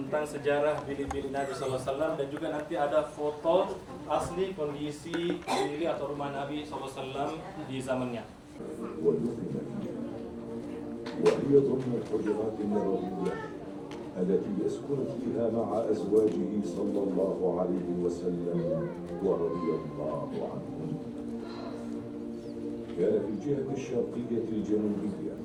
sejarah bilik-bilik Nabi SAW dan juga nanti ada foto asli kondisi bilik atau rumah Nabi SAW di zamannya. وهي ضمن الحجرات النبوية التي يسكن فيها مع أزواجه صلى الله عليه وسلم ورضي الله عنهم. كان في الجهة الشرقية الجنوبية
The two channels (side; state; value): both; identical; correlation 1.00